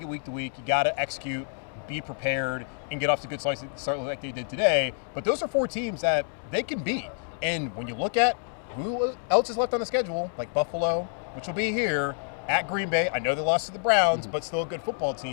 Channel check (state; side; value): silent; right; 57 dB below the other